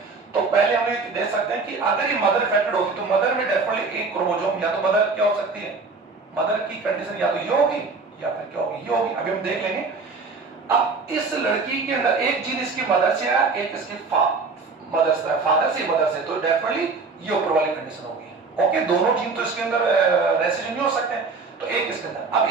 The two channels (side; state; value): left; quieter; 4.2 dB